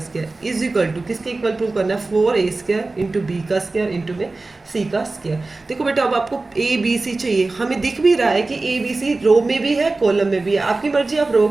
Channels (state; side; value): quieter; left; 3.4 dB